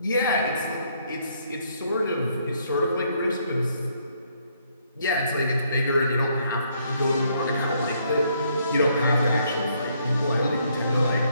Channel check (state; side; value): inverted; both; correlation -0.70